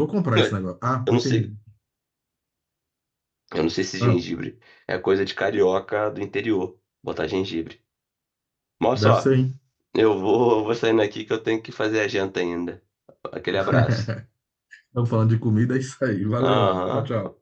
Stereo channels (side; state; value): both; identical; correlation 1.00